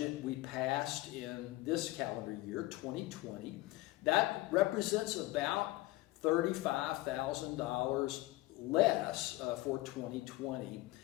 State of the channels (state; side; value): quieter; right; 19.0 dB